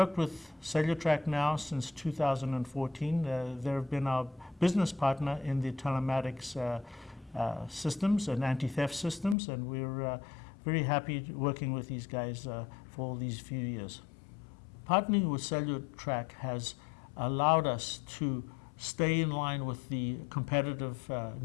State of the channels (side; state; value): right; drops out; at 9.3 s